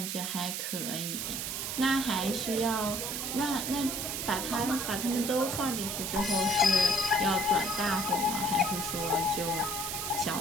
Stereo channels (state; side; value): noise; right; hiss, 3 dB below the sound